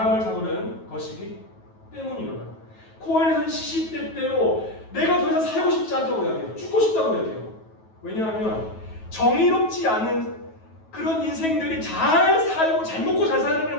잡으려는 것이기 때문이로다. 코엘렛은 시시때때로 내가 더 이상 살고 싶지 않다고 이야기해요. 죽고 싶다고 이야기해요. 왜냐하면 정의롭지 않은 그런 인생들이 잘 살고 잘 먹고 잘 사는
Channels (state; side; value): late; right; 9.2 ms